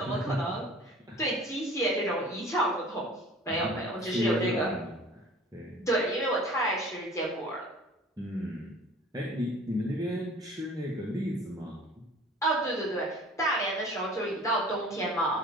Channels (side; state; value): both; normal; correlation 0.46